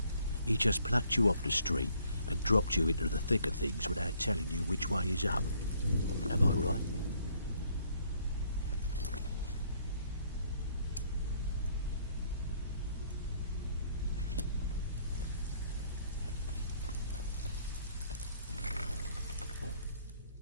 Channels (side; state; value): both; inverted; correlation -0.64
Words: He just plucked you off the street and dropped you into the thick of things without telling you which way is up. Am I right?